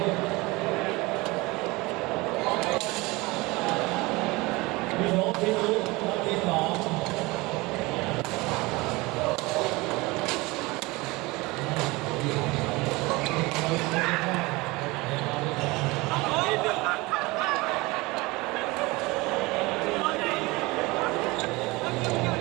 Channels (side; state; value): left; quieter; 23.0 dB